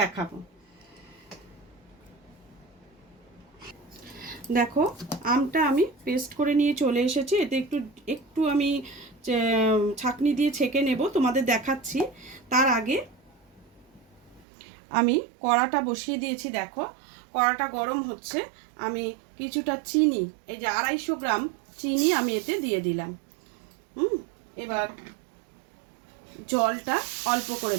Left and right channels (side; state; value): left; drops out; at 14.5 s